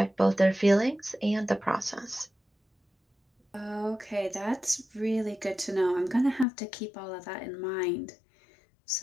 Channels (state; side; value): drops out; right; at 6.5 s